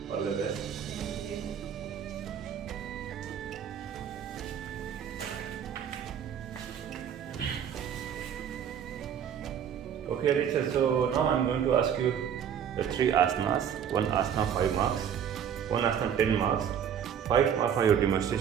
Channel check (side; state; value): left; quieter; 8.6 dB